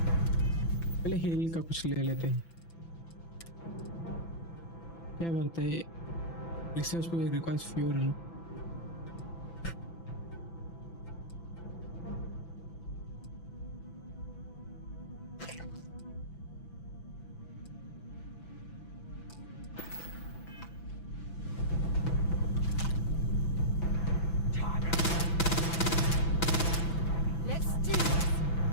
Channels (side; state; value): right; late; 6.0 ms